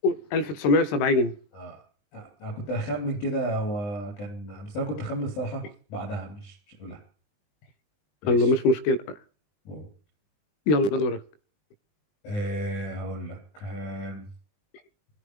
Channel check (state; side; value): late; right; 20 ms